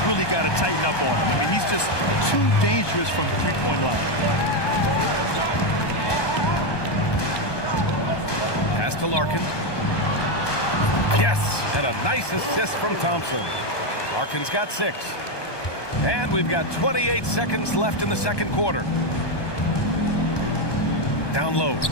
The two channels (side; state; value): right; late; 1.2 ms